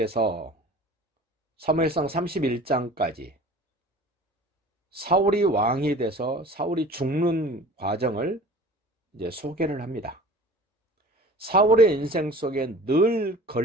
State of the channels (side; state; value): both; normal; correlation 0.43